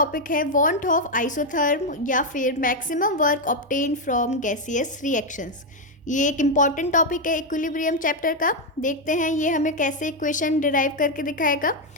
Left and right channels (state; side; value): normal; both; correlation 0.03